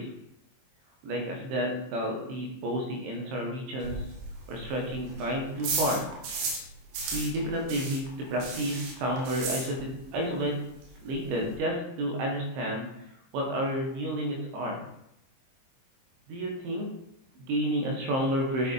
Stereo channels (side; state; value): left; late; 23 ms